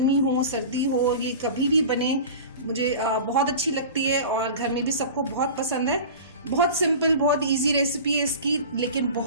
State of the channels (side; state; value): both; inverted; correlation -0.35